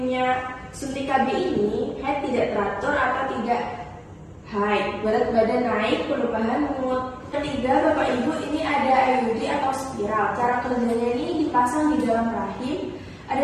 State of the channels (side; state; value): both; identical; correlation 1.00